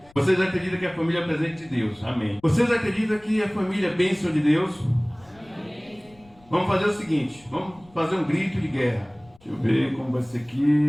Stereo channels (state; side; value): noise; left; rumble, 28 dB below the sound